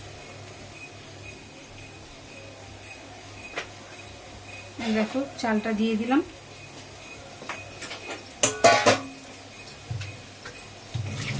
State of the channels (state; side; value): identical; both; correlation 1.00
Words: দেখো চালটা দিয়ে দিলাম।